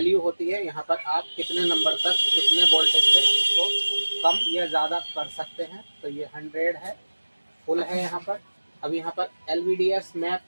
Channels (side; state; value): both; inverted; correlation -1.00